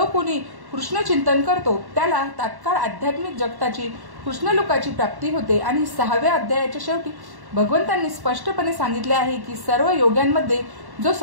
कोणी कृष्ण चिंतन करतो त्याला तात्काळ आध्यात्मिक जगताची कृष्णलोकाची प्राप्ती होते. आणि 6व्या अध्यायाच्या शेवटी भगवंतांनी स्पष्टपणे सांगितले आहे की सर्व योग्यांमध्ये जो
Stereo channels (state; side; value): late; left; 1.1 ms